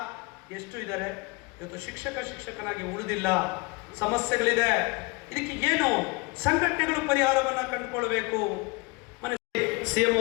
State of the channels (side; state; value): right; quieter; 26.6 dB